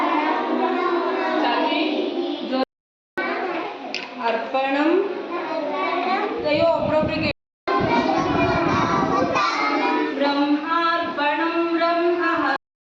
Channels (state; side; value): identical; both; correlation 1.00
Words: ಅರ್ಪಣಂ ಅಯ್ಯೋ ಒಬ್ಬೊಬ್ಬರಿಗೆ. ಬ್ರಹ್ಮಾರ್ಪಣಂ